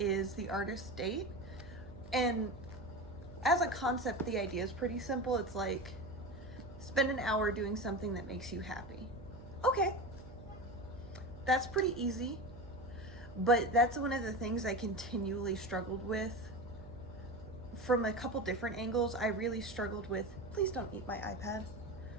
the artist state. And as a concept, the idea is pretty simple. It's like, spend an hour doing something that makes you happy. Okay, that's pretty easy, but that's one of the things I continually struggled with from a couple different angles. I really struggled with, please don't eat my iPad.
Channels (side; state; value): right; noise; hum, 16 dB below the sound